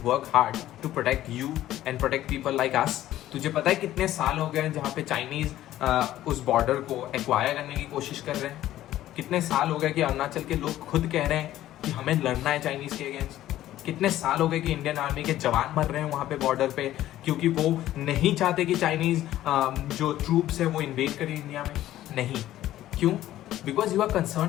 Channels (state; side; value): quieter; right; 13.7 dB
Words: work hard to protect you and protect people like us. तुझे पता है कितने साल हो गए हैं जहाँ पे चाइनीज उस बॉर्डर को एक्वायर करने की कोशिश कर रहे हैं? कितने साल हो गए कि अरुणाचल के लोग खुद कह रहे हैं कि हमें लड़ना है चाइनीज के अगेंस्ट? कितने साल हो गए कि इंडियन आर्मी के जवान मर रहे हैं वहाँ पे बॉर्डर पे, क्योंकि वो नहीं चाहते कि चाइनीज जो ट्रूप्स है वो इन्वेड करें इंडिया में? नहीं, क्यों? Because you are